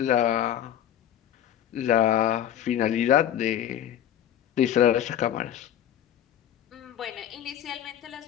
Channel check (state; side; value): quieter; right; 10.7 dB